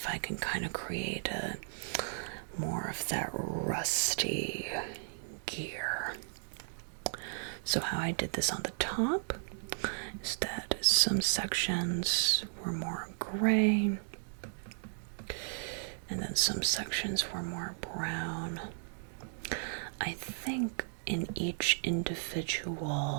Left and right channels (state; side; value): silent; left; digital silence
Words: I can kind of create a more of that rusty gear. So how I did this on the top is that some sections were more gray, and then some sections were more brown. I think in each